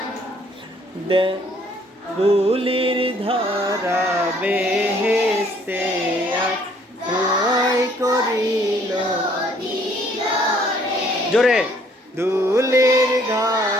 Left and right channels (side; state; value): both; normal; correlation 0.62